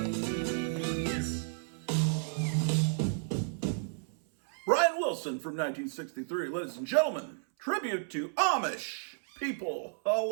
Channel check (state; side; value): silent; left; 56 dB below the other